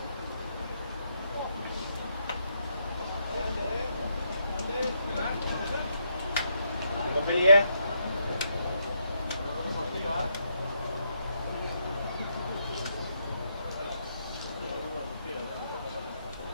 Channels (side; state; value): both; inverted; correlation -0.77